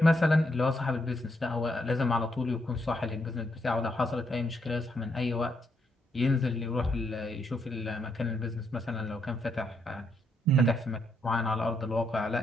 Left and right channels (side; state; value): both; normal; correlation 0.77